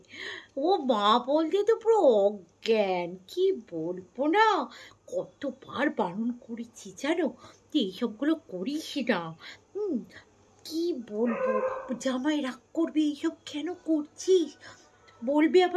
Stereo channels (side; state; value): both; identical; correlation 1.00